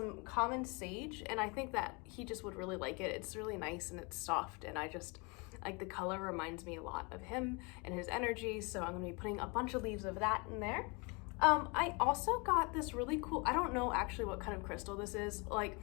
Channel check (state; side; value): quieter; right; 29.9 dB